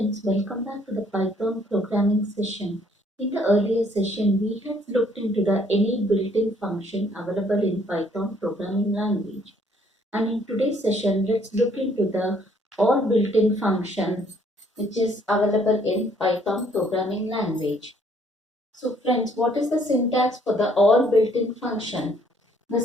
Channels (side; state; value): both; normal; correlation 0.64